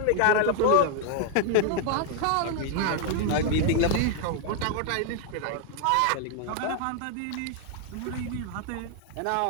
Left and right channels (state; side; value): different; both; correlation 0.00